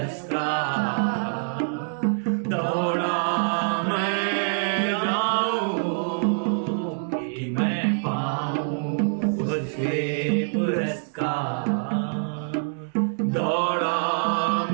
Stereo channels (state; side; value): silent; left; digital silence